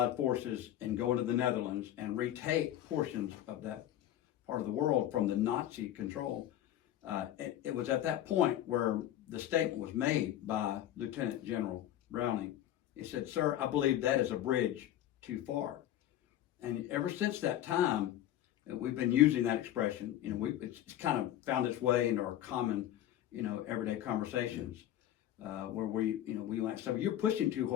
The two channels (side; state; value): right; quieter; 12.3 dB